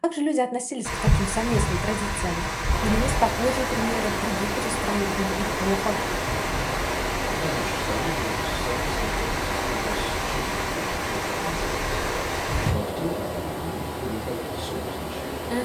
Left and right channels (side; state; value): both; identical; correlation 1.00